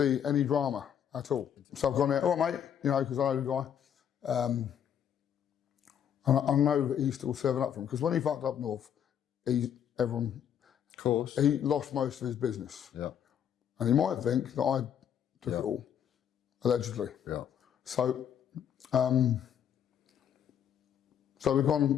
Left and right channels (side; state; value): right; quieter; 9.1 dB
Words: any drama at all. So I've gone there, all right, mate, you know, because I know the guy. And I know that he's still serving up for him, because when he fucked up north, everyone... Of course. He lost most of his business. Yeah. And he might think that I took it all, allegedly. Yeah. So, so we've